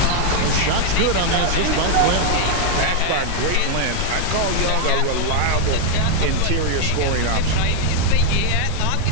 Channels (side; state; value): both; different; correlation 0.00